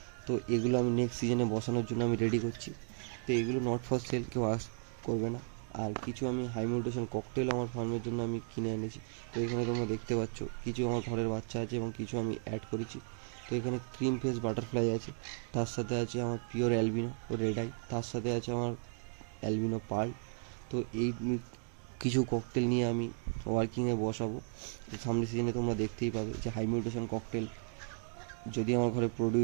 তো এগুলো আমি নেক্সট সিজনে বসানোর জন্য আমি রেডি করছি। তো এগুলো নট ফর সেল, কেউ করবে না। আর কিছু আমি হাই মিউটেশন ককটেল আমার ফার্মের জন্য আমি কিনে এনেছি। তো এখানে তোমরা দেখতে পাচ্ছ কিছু আমার ঘরের বাচ্চা আছে এবং কিছু আমি অ্যাড করেছি। তো এখানে ক্রিম ফেস বাটারফ্লাই আছে, তার সাথে আছে আমার পিওর অ্যালবিনো রেড আই, তার সাথে আছে আমার অ্যালবিনো পার্ল। তো এই কিছু ককটেল নিয়ে আমি ওয়ার্কিংয়ে বসাবো। সামনের সিজনে তোমরা দেখতেই পাবে যে হাই মিউটেশন ককটেল যদি আমার ঘরে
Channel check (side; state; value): left; silent; 54 dB below the other